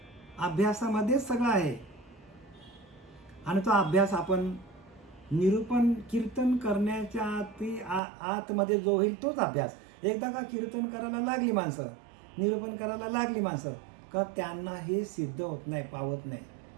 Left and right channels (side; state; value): left; drops out; at 8.0 s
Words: अभ्यासामध्येच सगळं आहे. आणि तो अभ्यास आपण निरूपण कीर्तन करण्याच्या आतमध्ये जो होईल तोच अभ्यास. एकदा का कीर्तन करायला लागली माणसं, निरूपण करायला लागली माणसं, का त्यांना हे सिद्ध होत नाही, पावत नाही.